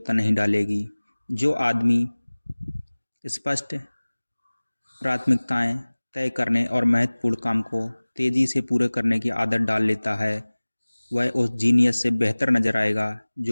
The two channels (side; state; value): both; inverted; correlation -1.00